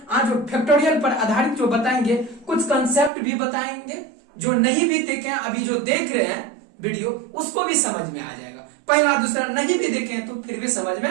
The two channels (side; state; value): left; drops out; at 3.1 s